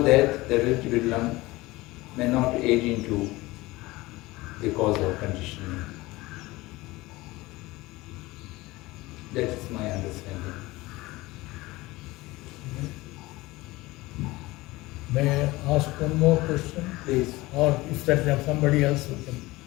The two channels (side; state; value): right; quieter; 20.3 dB